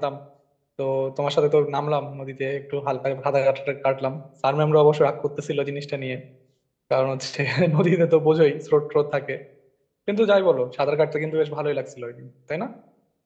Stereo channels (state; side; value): identical; both; correlation 1.00